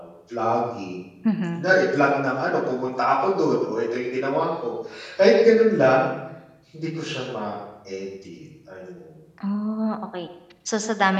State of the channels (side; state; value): both; identical; correlation 1.00